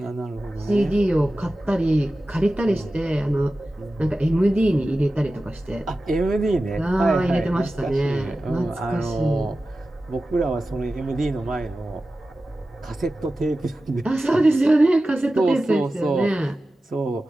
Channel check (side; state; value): both; normal; correlation 0.94